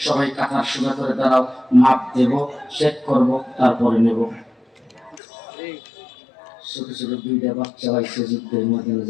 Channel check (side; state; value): right; drops out; at 5.2 s